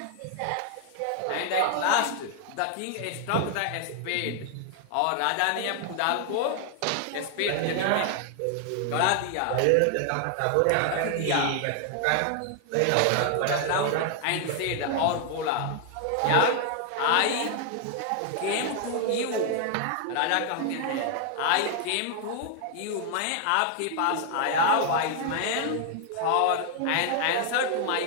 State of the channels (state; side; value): different; both; correlation 0.00